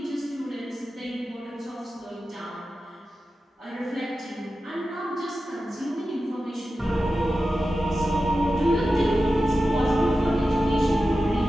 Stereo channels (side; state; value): both; normal; correlation 0.93